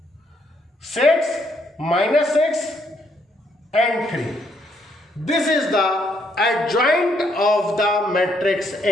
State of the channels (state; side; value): normal; both; correlation 0.72